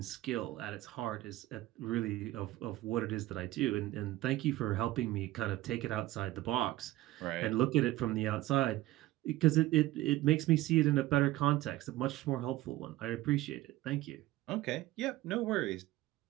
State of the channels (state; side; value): quieter; left; 16.6 dB